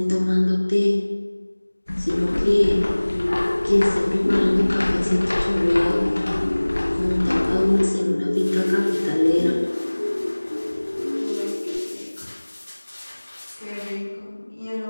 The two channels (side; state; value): both; inverted; correlation -1.00